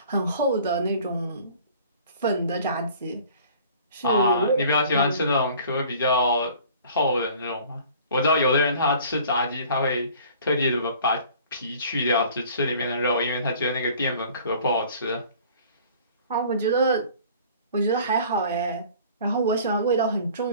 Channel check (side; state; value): both; inverted; correlation -0.49